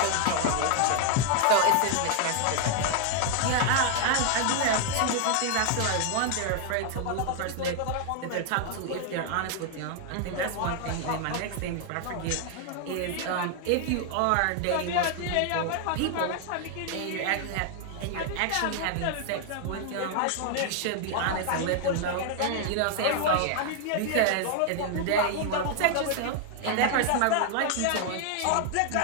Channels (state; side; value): different; both; correlation 0.00